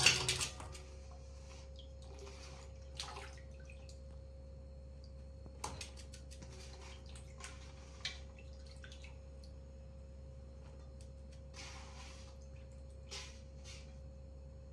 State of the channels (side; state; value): both; identical; correlation 1.00